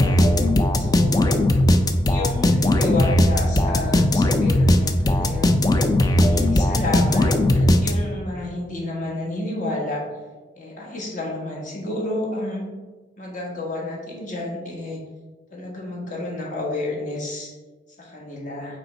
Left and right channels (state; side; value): normal; both; correlation 0.82